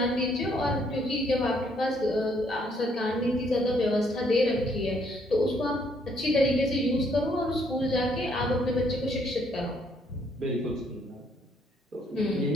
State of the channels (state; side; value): normal; both; correlation 0.68